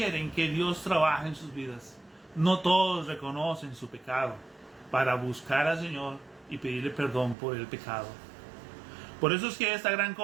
que Dios trabaje en sus vidas. No todos reconocen su pecado para buscar al Señor y pedirle perdón por el pecado. Por eso es que esta gran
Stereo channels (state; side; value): drops out; left; at 7.4 s